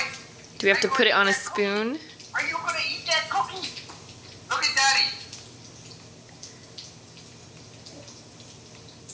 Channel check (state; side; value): identical; both; correlation 1.00